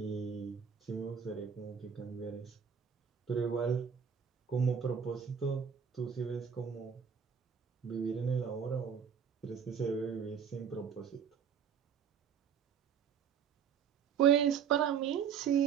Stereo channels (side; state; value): left; quieter; 7.4 dB